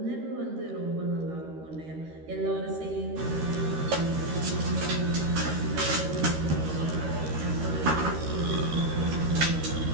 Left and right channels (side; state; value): left; late; 13 ms